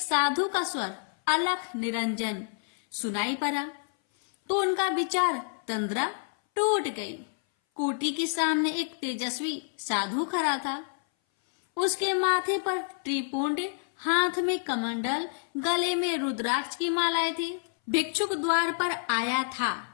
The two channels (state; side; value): silent; right; 58 dB below the other